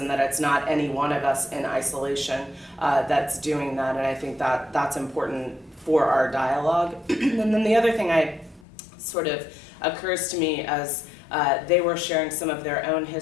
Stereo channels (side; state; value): right; drops out; at 8.7 s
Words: that it's not any one of us in isolation that's doing that. And I think that that's important for our dialogue. And then the other thing sort of occurs to me as they were sharing some of their own